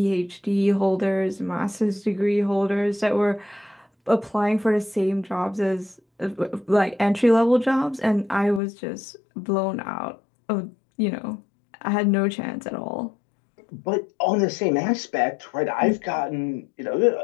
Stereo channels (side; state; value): right; drops out; at 8.6 s